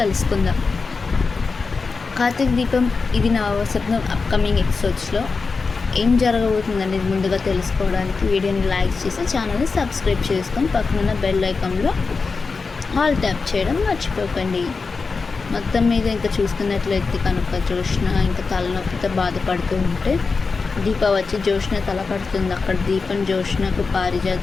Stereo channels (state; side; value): quieter; right; 4.5 dB